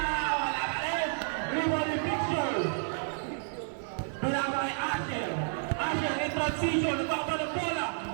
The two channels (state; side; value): silent; left; 57 dB below the other